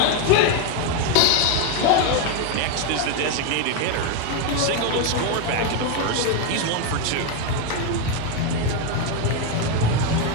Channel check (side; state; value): both; different; correlation 0.02